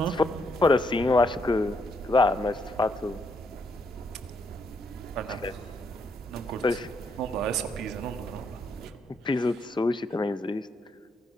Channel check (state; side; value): normal; both; correlation 0.75